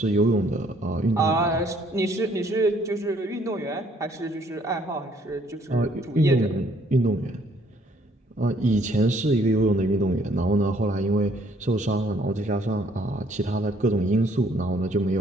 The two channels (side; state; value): both; normal; correlation 0.64